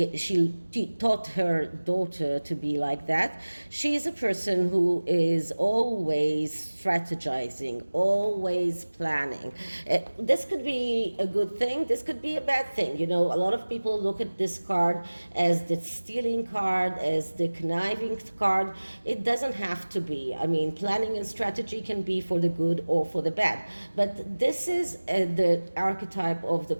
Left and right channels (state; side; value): inverted; both; correlation -1.00